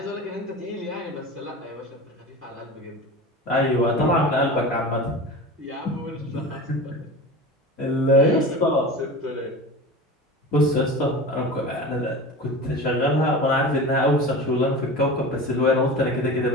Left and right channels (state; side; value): normal; both; correlation 0.32